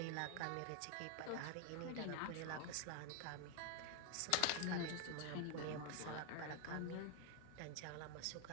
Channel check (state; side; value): different; both; correlation 0.01